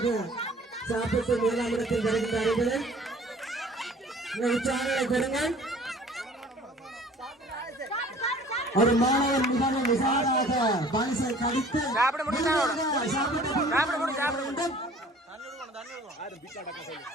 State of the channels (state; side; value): normal; both; correlation 0.50